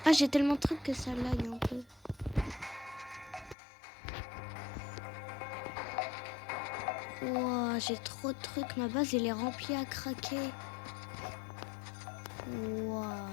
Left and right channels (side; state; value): right; drops out; at 3.6 s